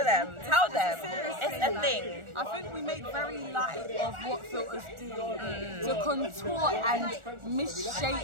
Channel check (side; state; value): left; late; 1.4 ms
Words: them. Tell them. It's a thing. I think we make very light of what filters do to contour and